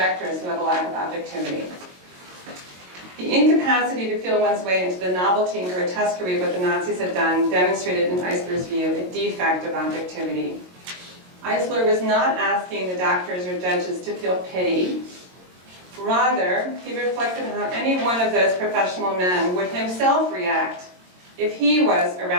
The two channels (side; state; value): left; late; 22 ms